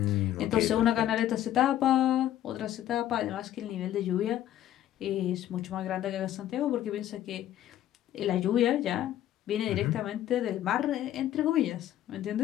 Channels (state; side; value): quieter; right; 12.3 dB